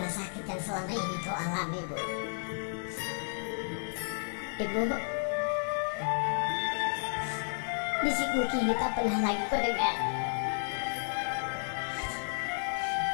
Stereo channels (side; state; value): right; silent; 56 dB below the other